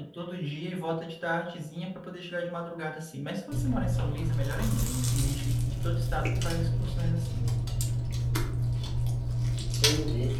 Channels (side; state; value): both; identical; correlation 1.00